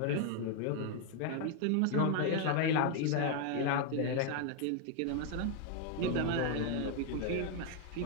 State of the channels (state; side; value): different; both; correlation 0.01